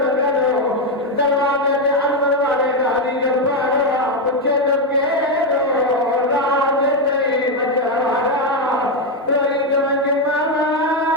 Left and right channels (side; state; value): both; normal; correlation 0.05